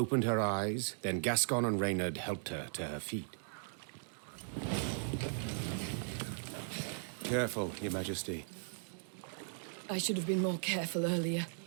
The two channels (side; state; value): left; silent; digital silence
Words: her eyes, then Gascon and Reynard helped her to her feet. Careful, Your Majesty. I should have been more careful earlier.